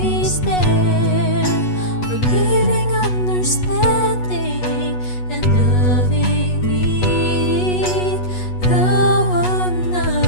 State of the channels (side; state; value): right; late; 8.2 ms